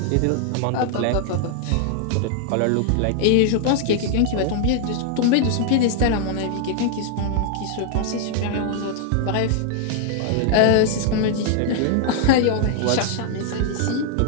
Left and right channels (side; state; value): both; different; correlation 0.00